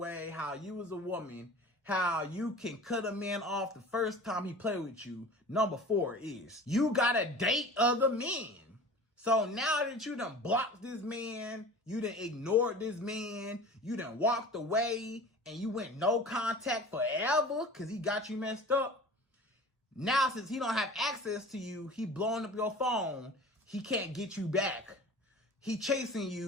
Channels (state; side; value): normal; both; correlation 0.40